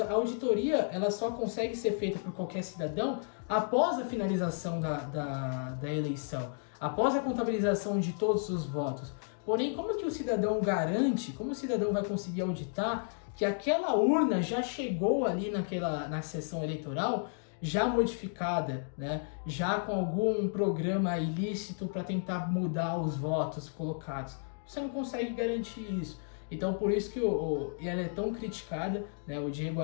auditoria ela só consegue ser feita por qualquer cidadão após a finalização da eleição, após a contabilização de todos os votos. Porém, como que o cidadão garante, como o cidadão vai conseguir auditar que aquela urna já chegou ali na sessão eleitoral já modificada, né? Já com algum programa ilícito para tentar mudar os votos colocados? Você não consegue garantir isso. Então por isso que ela é tão criticada, né? O Diego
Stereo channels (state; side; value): silent; right; digital silence